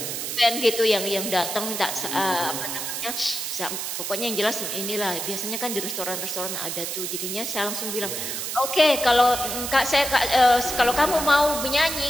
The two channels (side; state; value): right; noise; hiss, 4 dB below the sound